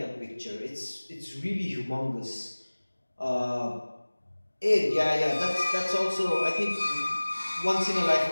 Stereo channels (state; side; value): inverted; both; correlation -1.00